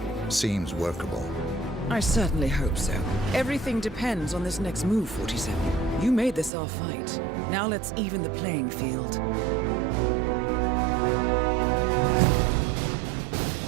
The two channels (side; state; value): left; drops out; at 6.5 s